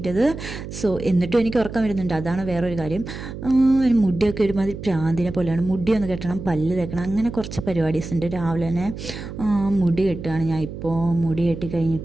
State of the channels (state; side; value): noise; right; hum, 10 dB below the sound